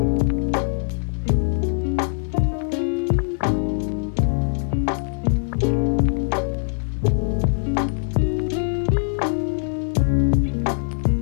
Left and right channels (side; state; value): right; silent; 58 dB below the other